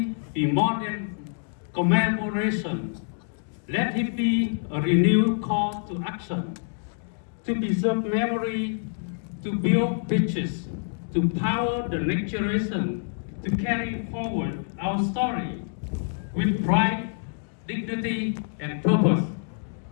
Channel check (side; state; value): right; silent; digital silence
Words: be more than commemoration. Let it be a renewed call to action, to preserve memory, to build bridges, to power the next generation, to carry forward our story with pride, dignity and purpose.